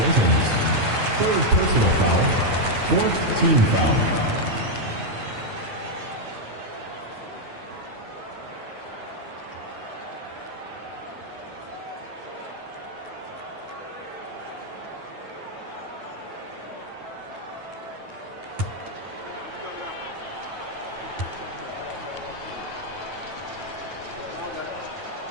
Third personal foul. Fourth team foul.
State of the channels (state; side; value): late; left; 9.3 ms